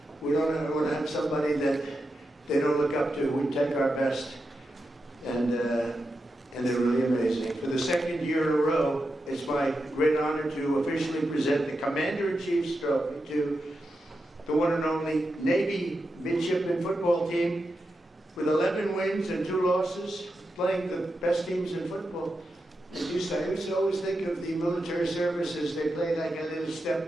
we don't want to have somebody that they don't look up to. We take our best, and they're really amazing. For the second year in a row, it's my great honor to officially present the Commander-in-Chief's trophy to the one and only Navy midshipman football team with 11 wins and 2 losses, playing the best teams in football. As you say, I used to always think of the military services, they play like a little step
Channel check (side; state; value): both; normal; correlation 0.88